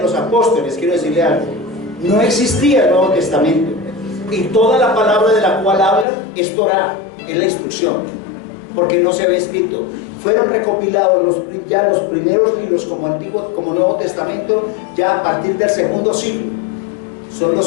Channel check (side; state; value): right; drops out; at 6.1 s